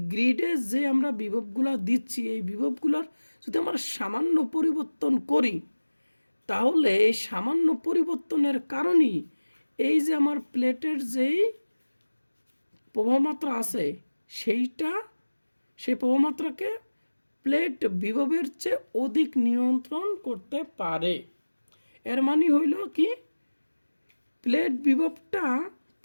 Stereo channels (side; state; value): both; inverted; correlation -1.00